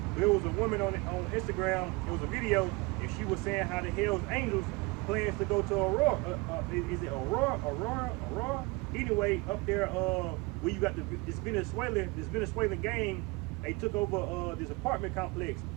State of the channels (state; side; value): quieter; left; 25.6 dB